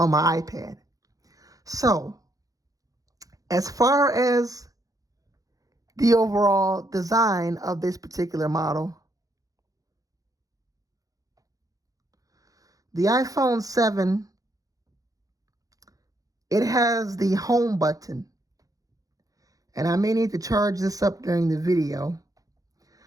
my iPad. So, as far as the overall design of this particular model, the iPhone 7, it has the home button. And I may need to charge this up during the video.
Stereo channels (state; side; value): late; left; 0.17 ms